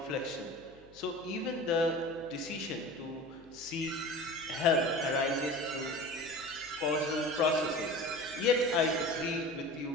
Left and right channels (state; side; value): noise; left; hum, 27 dB below the sound